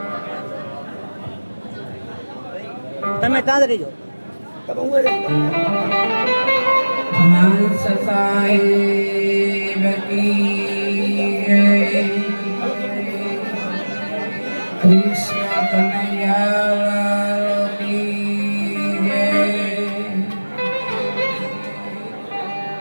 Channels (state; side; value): inverted; both; correlation -1.00